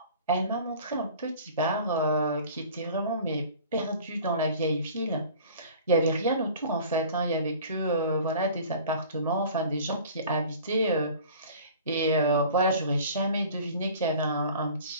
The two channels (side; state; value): both; inverted; correlation -0.45